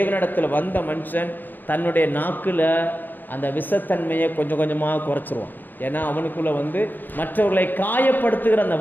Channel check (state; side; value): late; right; 0.088 ms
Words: வந்த மனுஷன் தன்னுடைய நாக்கில் அந்த விஷத்தன்மையை கொஞ்சம் கொஞ்சமாக குறைச்சிருவான். ஏன்னா அவனுக்குள்ளே மற்றவர்களை காயப்படுத்துகிற அந்த